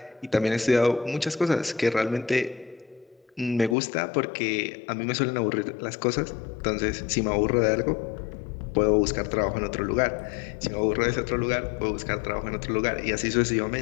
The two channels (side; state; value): right; drops out; at 3.8 s